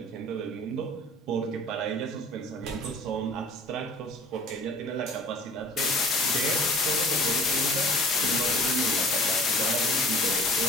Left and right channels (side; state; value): both; normal; correlation 0.48